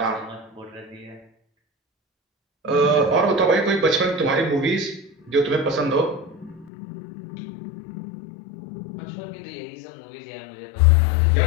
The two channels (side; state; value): right; drops out; at 6.7 s